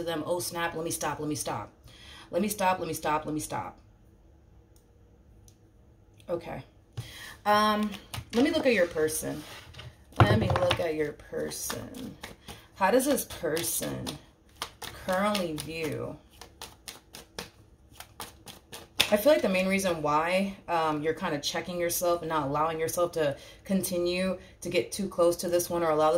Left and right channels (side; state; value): both; identical; correlation 1.00